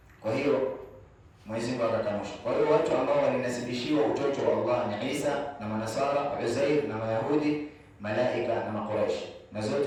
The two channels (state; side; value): identical; both; correlation 1.00